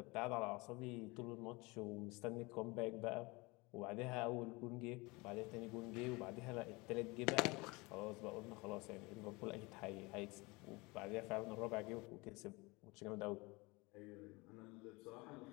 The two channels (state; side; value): quieter; right; 24.9 dB